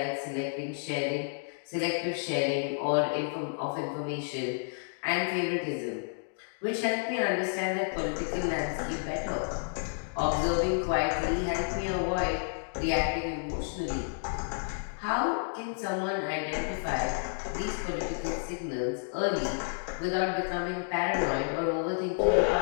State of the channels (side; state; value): right; silent; digital silence